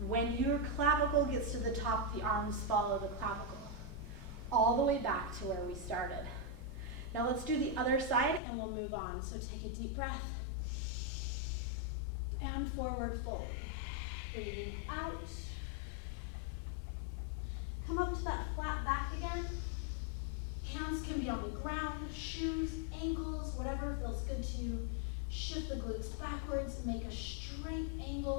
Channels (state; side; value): drops out; right; at 8.4 s